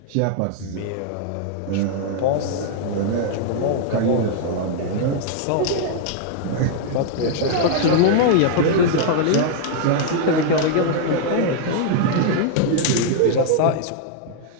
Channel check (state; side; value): different; both; correlation 0.00